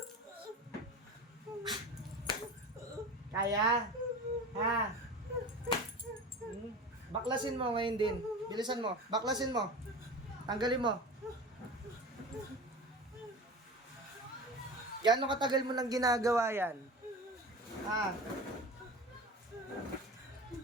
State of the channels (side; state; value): both; normal; correlation 0.33